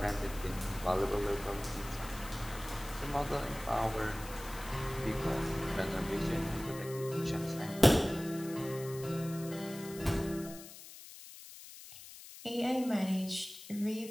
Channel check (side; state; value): left; noise; hiss, 15 dB below the sound